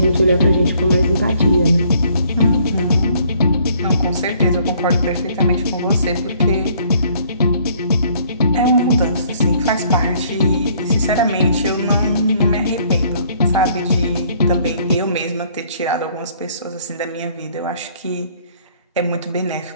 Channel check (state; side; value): inverted; both; correlation -0.61